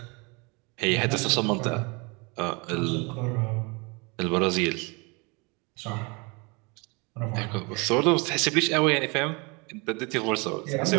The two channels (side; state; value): left; quieter; 29.1 dB